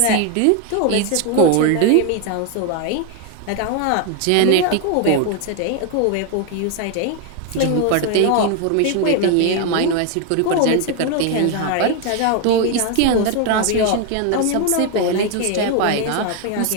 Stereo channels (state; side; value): different; both; correlation 0.01